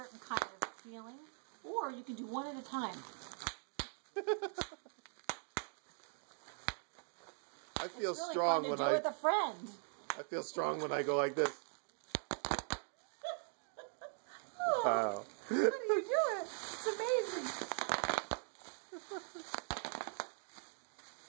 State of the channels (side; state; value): left; silent; 50 dB below the other